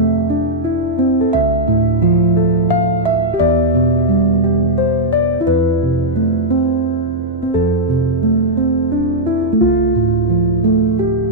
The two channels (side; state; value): both; normal; correlation -0.04